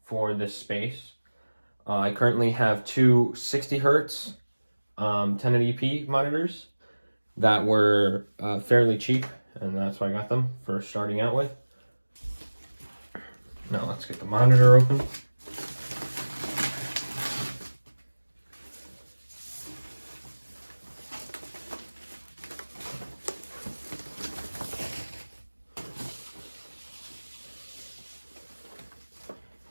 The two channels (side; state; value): both; inverted; correlation -1.00